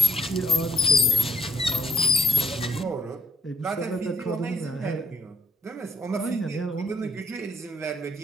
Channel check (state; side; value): normal; both; correlation 0.64